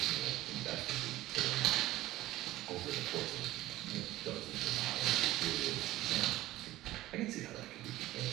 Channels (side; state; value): left; quieter; 16.1 dB